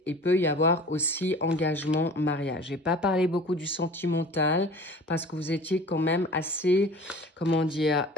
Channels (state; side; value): normal; both; correlation 0.42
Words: il peut y avoir aussi engagement, mariage. J'ai pas parlé beaucoup du sentimental parce que vous étiez quand même assez, comment dire,